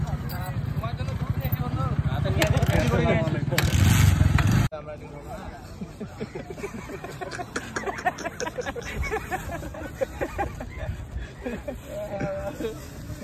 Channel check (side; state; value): both; identical; correlation 1.00